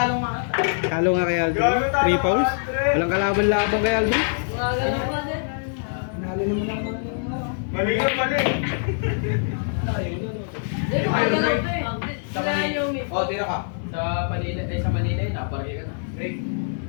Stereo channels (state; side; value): silent; right; digital silence